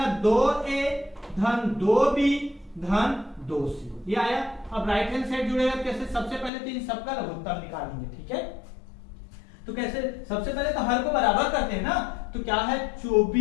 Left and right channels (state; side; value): drops out; right; at 6.5 s